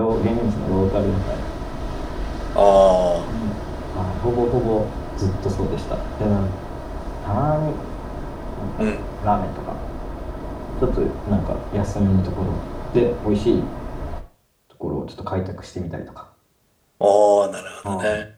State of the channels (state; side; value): identical; both; correlation 1.00